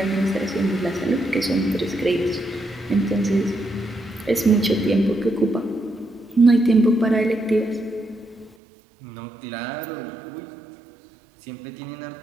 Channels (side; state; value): left; drops out; at 8.6 s